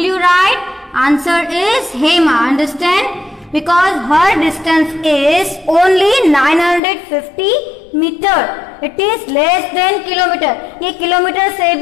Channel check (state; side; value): drops out; right; at 6.8 s